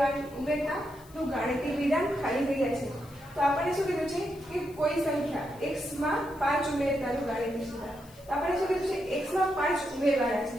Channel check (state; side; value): noise; left; hiss, 24 dB below the sound